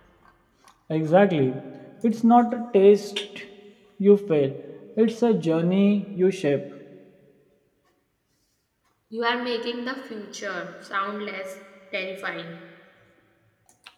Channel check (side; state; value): both; identical; correlation 1.00